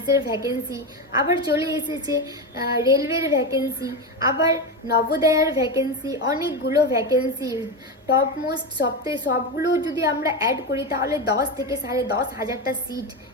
ভ্যাকেন্সি। আবার চলে এসেছে রেলওয়ের ভ্যাকেন্সি, আবার নবোদয়ার ভ্যাকেন্সি, অনেকগুলো ভ্যাকেন্সি। টপ মোস্ট সবগুলো যদি আমরা অ্যাড করি তাহলে 10 থেকে 10,500টা সিট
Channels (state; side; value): normal; both; correlation 0.15